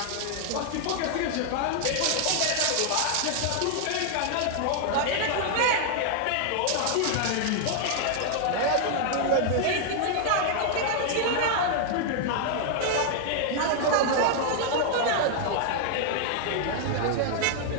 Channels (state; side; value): different; both; correlation 0.00